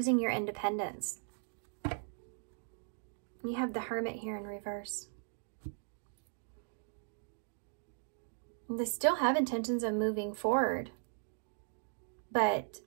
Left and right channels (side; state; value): left; silent; digital silence